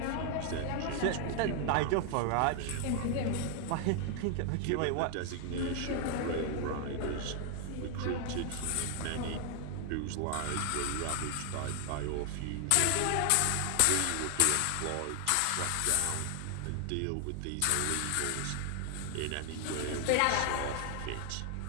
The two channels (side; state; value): both; different; correlation 0.00